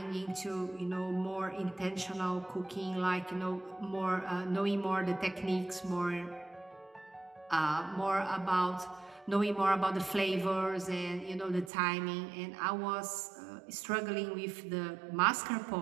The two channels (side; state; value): left; drops out; at 11.7 s